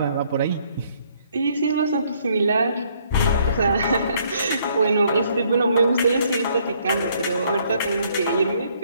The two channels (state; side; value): inverted; both; correlation -0.66